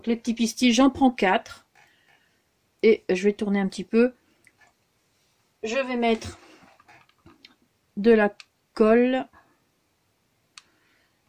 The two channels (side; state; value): both; identical; correlation 1.00